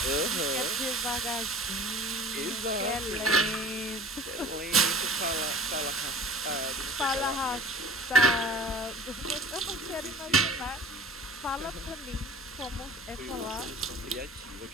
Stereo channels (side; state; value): both; normal; correlation 0.42